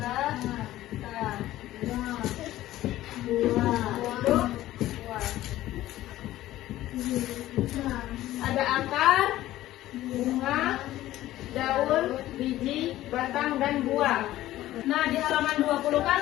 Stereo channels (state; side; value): quieter; right; 14.9 dB